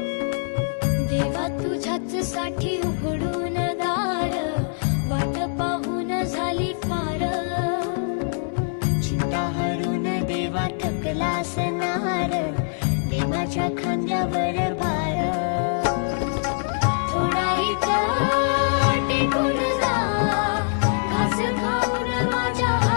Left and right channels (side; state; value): right; silent; digital silence